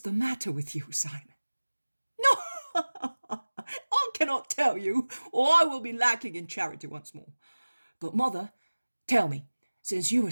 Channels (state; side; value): inverted; both; correlation -1.00